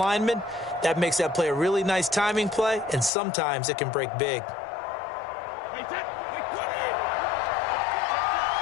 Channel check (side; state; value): right; drops out; at 3.1 s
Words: That makes that play a really nice timing play, and sometimes it can break big.